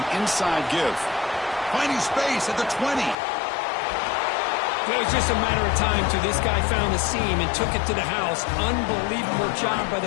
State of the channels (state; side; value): drops out; right; at 3.2 s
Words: an inside give. Finding space at the 20. It was just a matter of time till this guy found the seam and took it to the house. Unbelievable job by